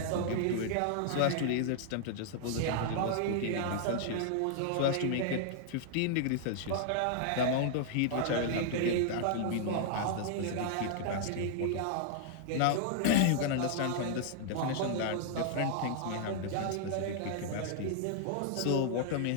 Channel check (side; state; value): both; different; correlation -0.01